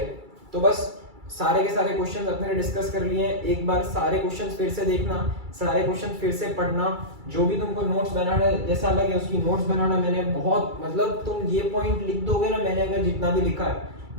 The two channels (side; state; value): left; late; 2.3 ms